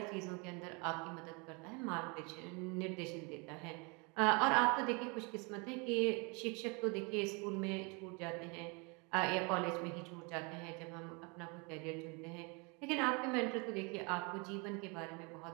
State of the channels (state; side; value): quieter; left; 31.2 dB